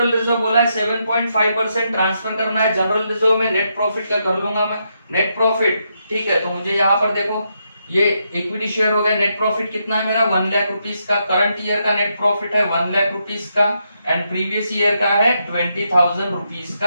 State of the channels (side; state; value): both; inverted; correlation -0.81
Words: रिजर्व बोला है 7.5% ट्रांसफर करना है जनरल रिजर्व में, नेट प्रॉफिट का कर लूंगा मैं नेट प्रॉफिट। ठीक है, तो मुझे यहाँ पर देखो ये इक्विटी शेयर हो गया, नेट प्रॉफिट कितना है मेरा 1 लाख रुपीस का, करंट ईयर का नेट प्रॉफिट है 1 लाख रुपीस का, एंड प्रीवियस ईयर का है 20,000 रुपीस